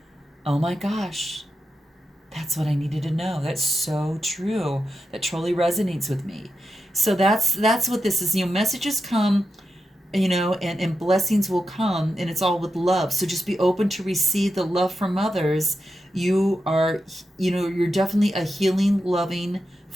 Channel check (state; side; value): normal; both; correlation 0.88